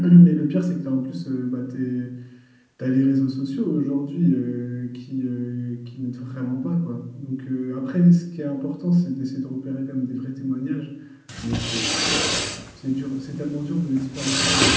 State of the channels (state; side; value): identical; both; correlation 1.00